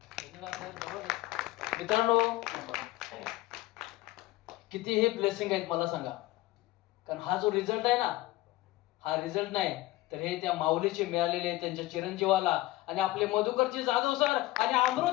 मित्रांनो, किती हे ब्लेसिंग आहेत मला सांगा. कारण हा जो रिझल्ट आहे ना, हा रिझल्ट नाही तर हे त्या माऊलीचे मिळालेले, त्यांच्या चिरंजीवाला आणि आपले मधुकरजी जाधव सर आणि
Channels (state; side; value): quieter; right; 17.7 dB